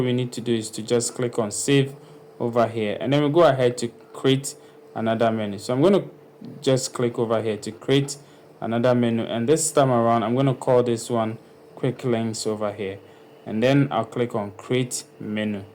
we need to do is to just click on save over here, and then we go ahead to create another menu. So I'm going to just click over here to create another menu, and this time around I'm going to call this one quick links over here, and then I'll click on create menu.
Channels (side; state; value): both; identical; correlation 1.00